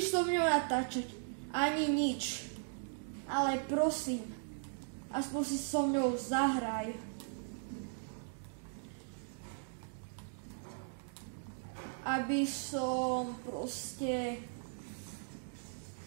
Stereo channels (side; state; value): left; silent; digital silence